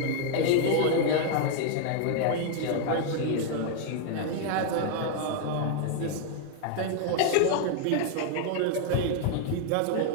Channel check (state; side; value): different; both; correlation 0.00